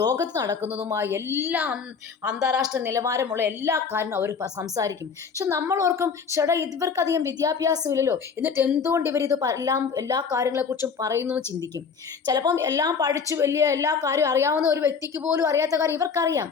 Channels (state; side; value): quieter; right; 5.9 dB